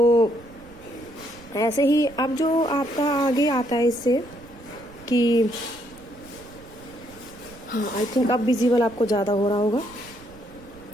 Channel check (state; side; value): noise; right; rumble, 22 dB below the sound